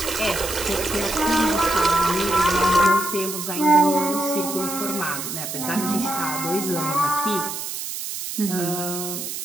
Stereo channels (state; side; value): noise; right; hiss, 6 dB below the sound